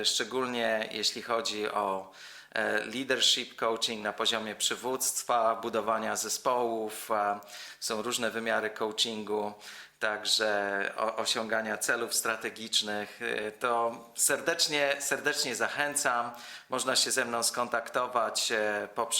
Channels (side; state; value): both; identical; correlation 1.00